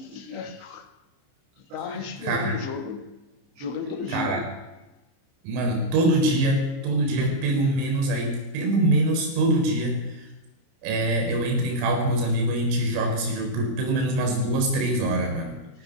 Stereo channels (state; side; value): late; left; 29 ms